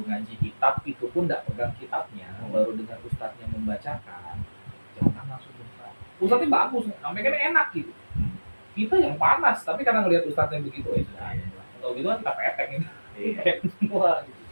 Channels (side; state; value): both; inverted; correlation -1.00